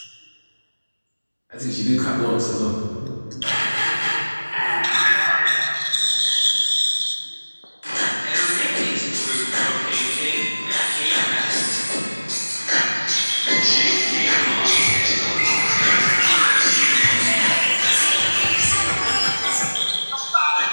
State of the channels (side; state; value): both; inverted; correlation -1.00